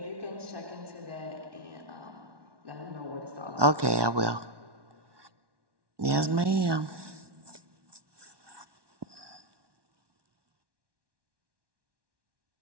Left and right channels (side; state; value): left; late; 1.1 ms